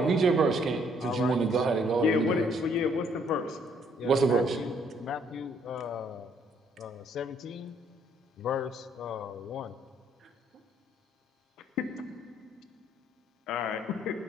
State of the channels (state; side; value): normal; both; correlation 0.66